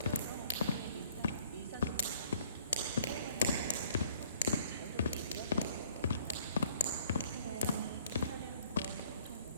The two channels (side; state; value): both; inverted; correlation -0.58